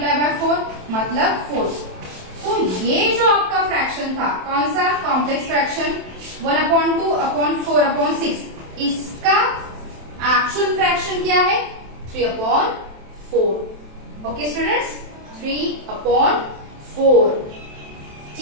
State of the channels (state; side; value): late; left; 27 ms